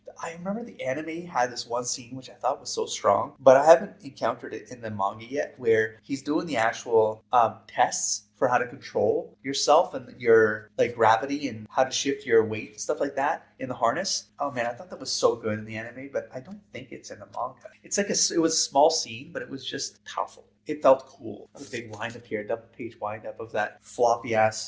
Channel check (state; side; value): identical; both; correlation 1.00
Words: I remember the anime had this one scene which I thought was so strong, but I haven't encountered it in the manga yet, where he's doing the actual tests for how to control yourself and your like gravity and how to shift your weight and stuff like that in the harness. Oh man, I thought that was so good in the anime, but I don't think it's in the manga. It's like it was a small scene, but it was just powerful. It felt cool. A big wind up here, double page wind up of that floppy